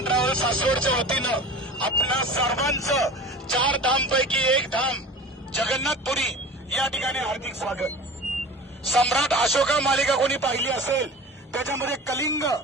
travels सासवडच्या वतीनं आपल्या सर्वांचं 4 धामपैकी एक धाम जगन्नाथपुरी या ठिकाणी हार्दिक स्वागत. सम्राट अशोका मालिका कोणी पाहिली असेल, त्याच्यामध्ये कलिंग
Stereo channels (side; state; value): both; normal; correlation 0.37